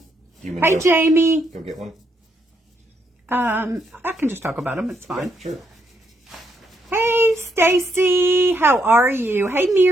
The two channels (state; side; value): normal; both; correlation 0.76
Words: Hey, Go, Jamie. Go get one. I can just talk about them. It's fine. Yeah, sure. Hey, Stacy, how are you? Hey,